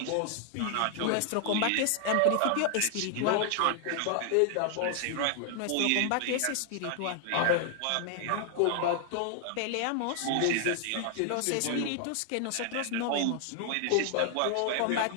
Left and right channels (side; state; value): both; different; correlation 0.00